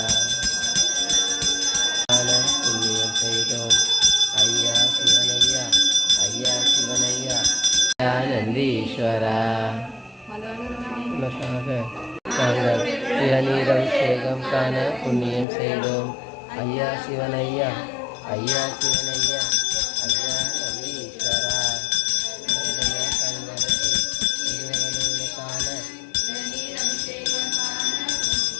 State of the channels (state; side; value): drops out; right; at 15.5 s